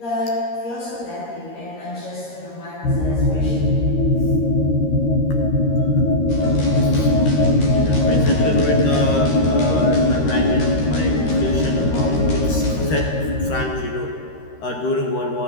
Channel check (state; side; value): late; right; 13 ms